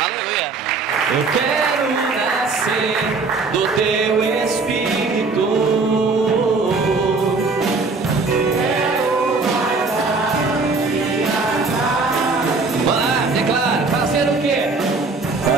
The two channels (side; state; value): left; quieter; 4.0 dB